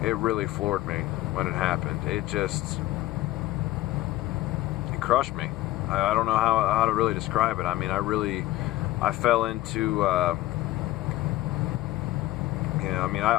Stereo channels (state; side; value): quieter; right; 16.5 dB